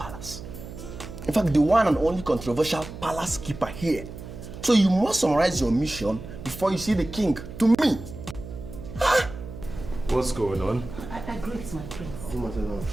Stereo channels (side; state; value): right; noise; hum, 12 dB below the sound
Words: In fact, the one and only controversial palace keeper here. So you must summarize your mission before you see the king to me. What's going on? I greet my